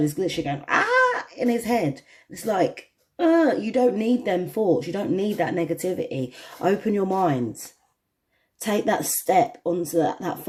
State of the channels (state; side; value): identical; both; correlation 1.00